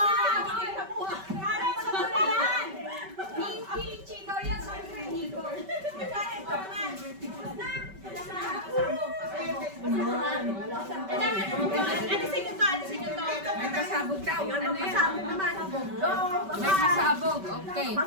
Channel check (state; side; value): late; left; 5.2 ms